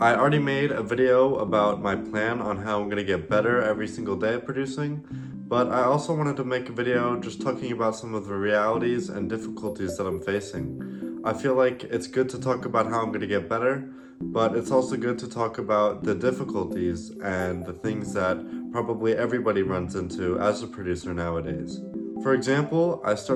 already made a video about my plan on how I'm going to get better every single day at producing, but I also wanted to make a video just talking about some of the realities and difficulties that I'm facing. I feel like it's good to talk about how I'm going to get better, but it's also good to talk about the difficulties and the things that probably everybody runs into as a producer nowadays. For example, I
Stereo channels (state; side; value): identical; both; correlation 1.00